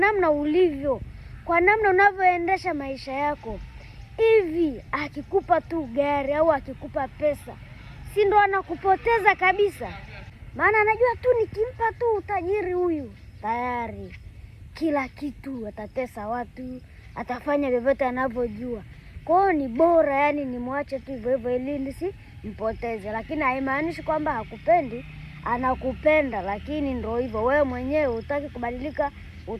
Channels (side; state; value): both; identical; correlation 1.00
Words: ulivyo, kwa namna unavyoendesha maisha yako. Hivi akikupa tu gari au akikupa pesa, si ndo anakupoteza kabisa? Maana anajua tu nikimpa tu utajiri huyu, tayari kila kitu, atatesa watu, atafanya vyovyote anavyojua. Kwa hiyo ni bora yani nimwache tu hivyo hivyo ili nisimpoteze. Lakini haimaanishi kwamba hakupendi, anakupenda, lakini ndio hivyo, wewe mwenyewe hutaki kubadilika,